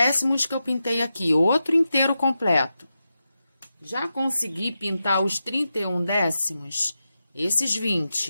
que eu pintei aqui, outro inteiro completo. Já consegui pintar os 31 décimos, esses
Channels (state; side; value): inverted; both; correlation -0.89